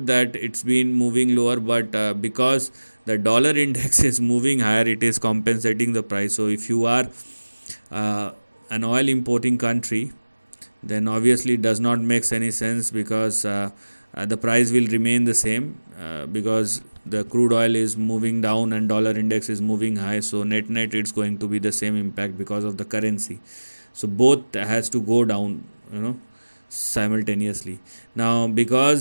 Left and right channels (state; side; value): inverted; both; correlation -1.00